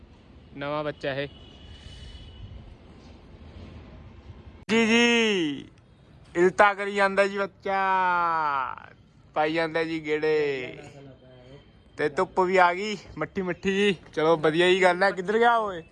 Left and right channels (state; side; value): identical; both; correlation 1.00